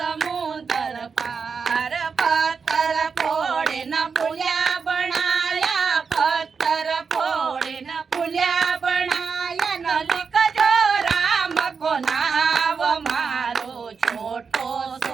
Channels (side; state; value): left; quieter; 5.5 dB